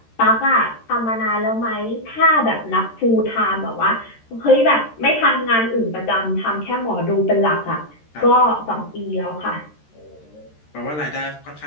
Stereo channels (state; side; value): late; right; 13 ms